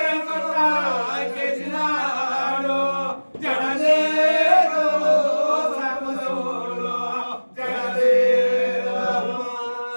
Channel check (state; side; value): inverted; both; correlation -1.00